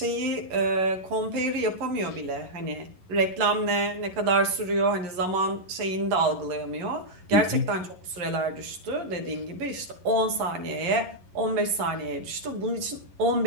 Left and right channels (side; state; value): left; late; 11 ms